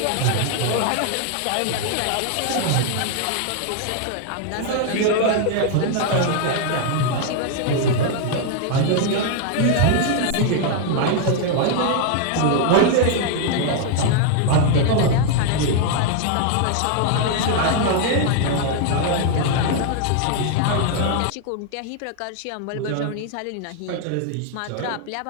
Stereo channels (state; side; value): different; both; correlation 0.00